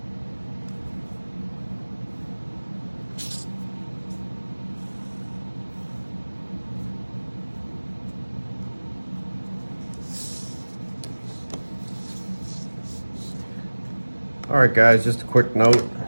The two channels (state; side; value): inverted; both; correlation -1.00